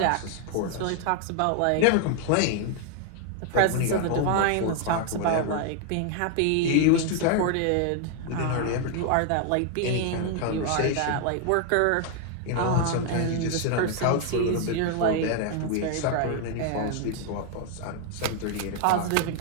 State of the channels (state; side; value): different; both; correlation 0.00